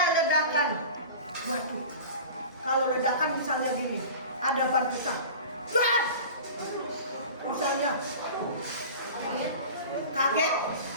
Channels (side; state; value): both; inverted; correlation -0.37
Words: ledakan. Waduh, kalau ledakan misalnya gini, ada ban pecah. Ban! Misalnya kaget.